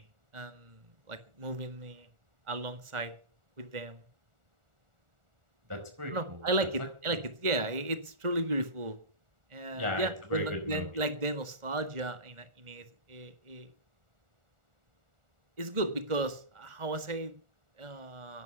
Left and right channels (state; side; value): late; left; 1.4 ms